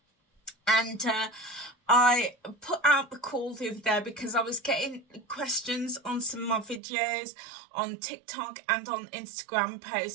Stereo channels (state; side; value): drops out; left; at 6.8 s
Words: And I put out the call the other day because I was getting questions on some of my videos on TikTok and on Instagram